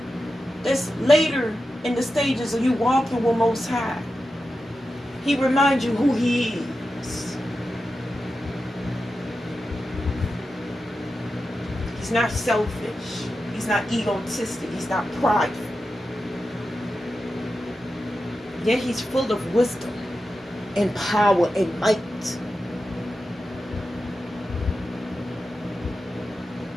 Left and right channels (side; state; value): both; normal; correlation 0.91